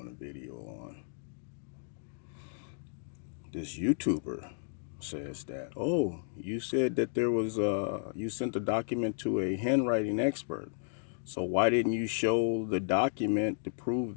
a video on. This YouTuber says that, oh, you said that there was, you sent a document to a handwriting expert. So why didn't you show the document to prove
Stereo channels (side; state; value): right; silent; digital silence